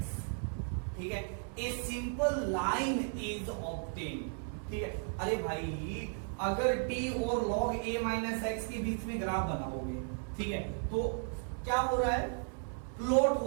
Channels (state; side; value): silent; left; 54 dB below the other